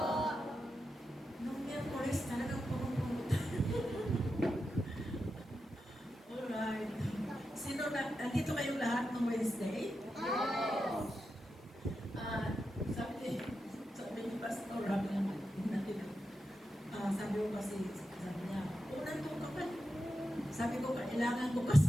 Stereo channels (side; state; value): both; normal; correlation 0.89